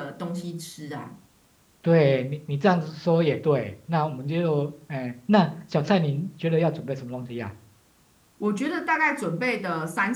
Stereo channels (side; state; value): both; identical; correlation 1.00